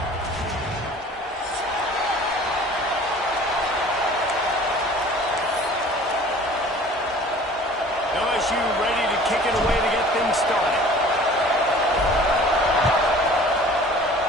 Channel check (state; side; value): normal; both; correlation 0.47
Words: LSU ready to kick it away to get things started.